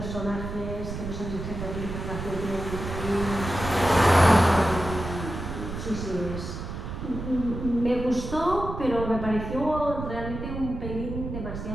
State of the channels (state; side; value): noise; right; rumble, 7 dB below the sound